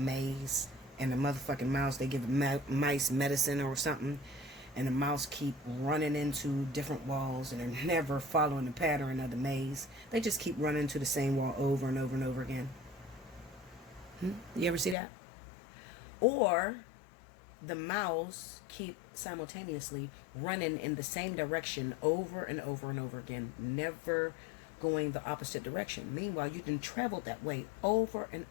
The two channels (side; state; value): right; drops out; at 15.0 s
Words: and the motherfucking mouse, they give mice medicine or something, and the mouse keep running into different walls, and they're never following the pattern of the maze. They just keep running into the same wall over and over and over again. You ever see that? Or the mouse keep simultaneously running in the same direction over and over and over again, never going the opposite direction. Meanwhile, you done traveled that way over and